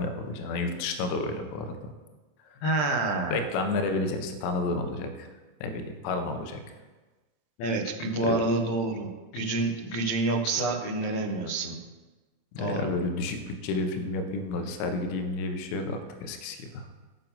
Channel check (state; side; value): late; right; 28 ms